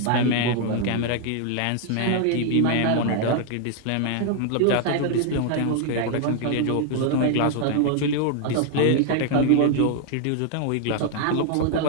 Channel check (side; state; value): both; different; correlation 0.00